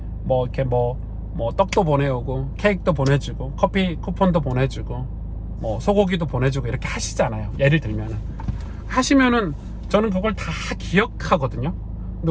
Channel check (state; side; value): identical; both; correlation 1.00